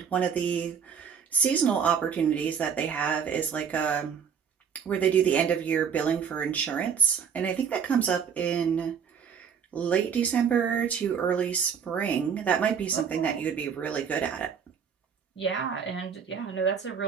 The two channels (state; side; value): quieter; left; 7.0 dB